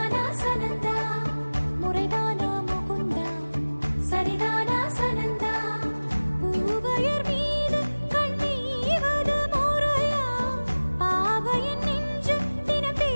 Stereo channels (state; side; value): inverted; both; correlation -1.00